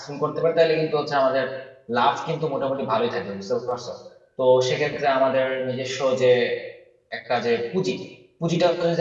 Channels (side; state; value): both; identical; correlation 1.00